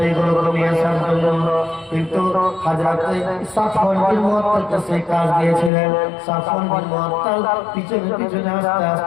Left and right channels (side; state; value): right; drops out; at 5.7 s